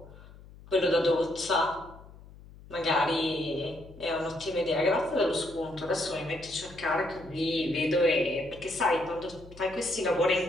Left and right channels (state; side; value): noise; left; hum, 20 dB below the sound